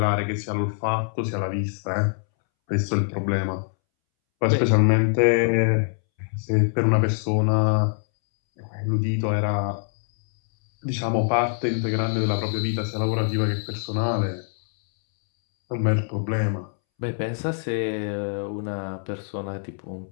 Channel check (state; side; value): silent; right; 62 dB below the other